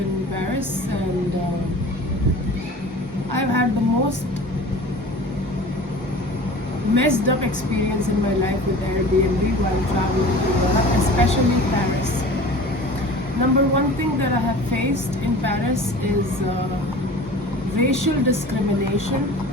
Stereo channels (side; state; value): both; normal; correlation 0.40